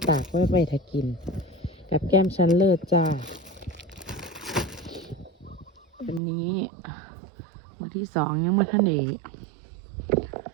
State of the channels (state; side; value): drops out; left; at 6.2 s